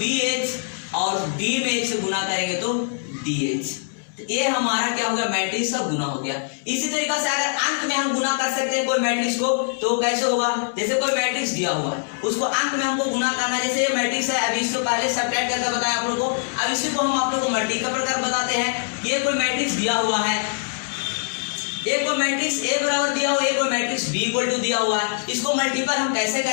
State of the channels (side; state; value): right; silent; digital silence